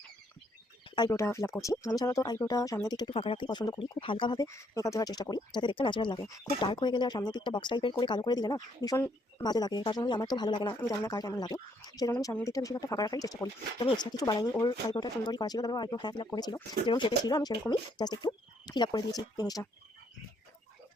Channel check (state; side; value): normal; both; correlation 0.70